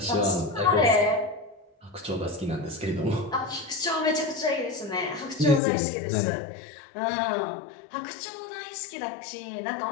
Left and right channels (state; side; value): drops out; right; at 5.6 s